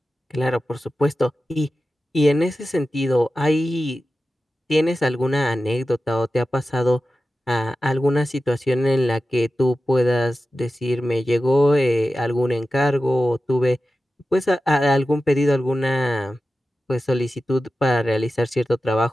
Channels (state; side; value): normal; both; correlation 0.93